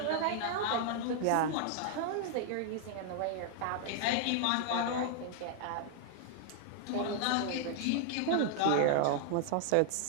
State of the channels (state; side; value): different; both; correlation 0.00